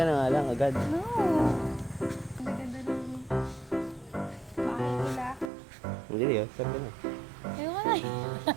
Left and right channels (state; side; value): drops out; left; at 5.5 s